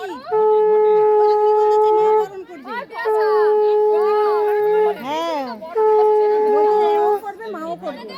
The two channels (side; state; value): both; identical; correlation 1.00